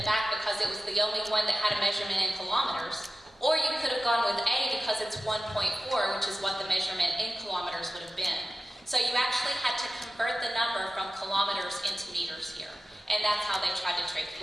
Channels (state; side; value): normal; both; correlation 0.94